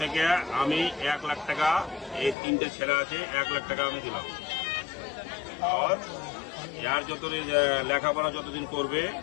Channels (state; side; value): drops out; right; at 2.4 s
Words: থেকে আমি 1 লাখ টাকা, এই 3টে ছেলে আছে, 1 লাখ টাকা আমি দিলাম। আর যার যতদিন লেখাপড়া যতদিন করবে,